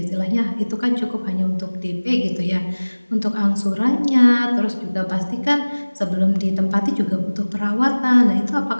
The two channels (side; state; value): both; inverted; correlation -1.00